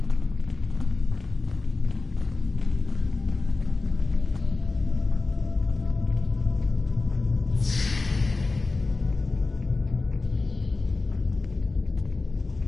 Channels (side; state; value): right; quieter; 3.7 dB